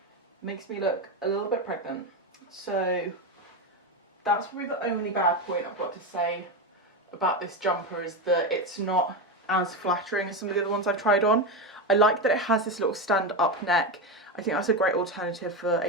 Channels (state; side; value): normal; both; correlation 0.14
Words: Makes me look a little bit pregnant. So that's probably the only bad point I've got to say about this jumper, is that it's not as flattering as some of the other ones I've tried on. I like that it has this little stand up neck. I think that's a great alternative for